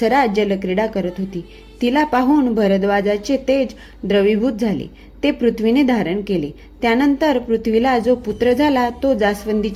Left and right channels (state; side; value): identical; both; correlation 1.00